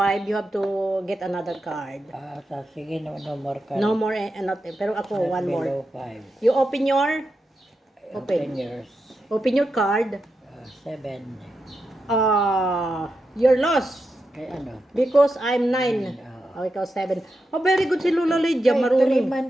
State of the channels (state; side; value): normal; both; correlation 0.87